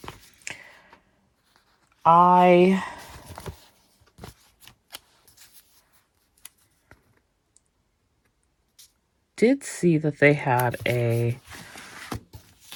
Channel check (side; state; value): both; identical; correlation 1.00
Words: I did see that they had a